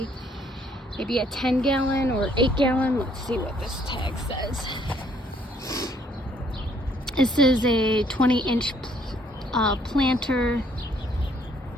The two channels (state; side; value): normal; both; correlation 0.65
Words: maybe a 10-gallon or 8-gallon. Let's see what this tag says. This is a 20-inch planter